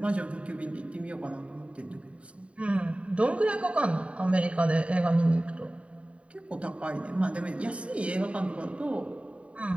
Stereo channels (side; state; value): left; late; 0.063 ms